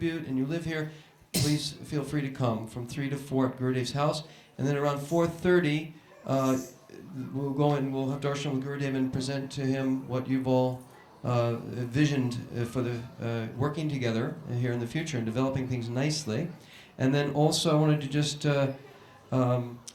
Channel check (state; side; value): identical; both; correlation 1.00